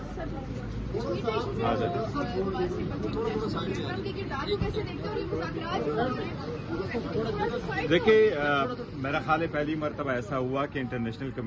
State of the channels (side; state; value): both; identical; correlation 1.00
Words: دیکھیے، میرا خیال ہے پہلی مرتبہ ایسا ہوا کہ انٹرنیشنل